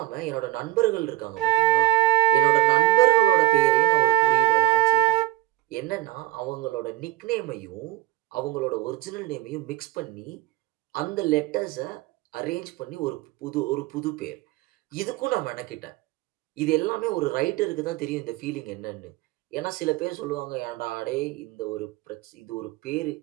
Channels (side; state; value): left; quieter; 16.7 dB